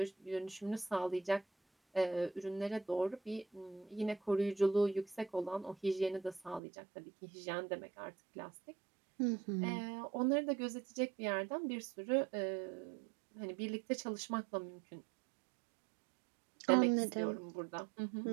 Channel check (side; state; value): left; drops out; at 6.6 s